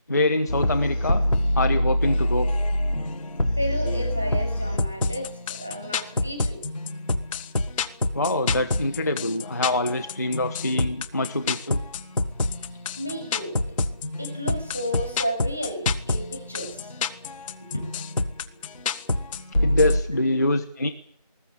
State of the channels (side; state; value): both; inverted; correlation -0.74